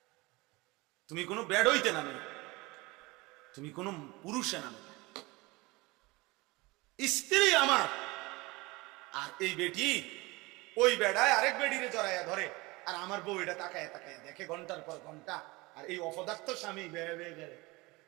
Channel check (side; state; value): left; quieter; 23.1 dB